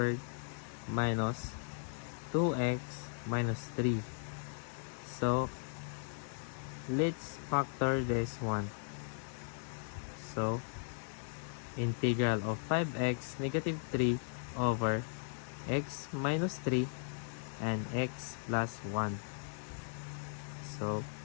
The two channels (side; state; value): right; silent; digital silence